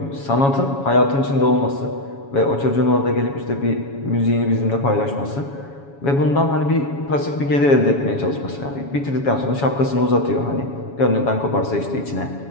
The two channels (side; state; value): right; late; 7.2 ms